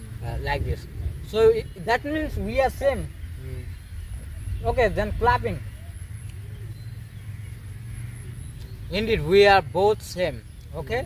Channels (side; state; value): both; identical; correlation 1.00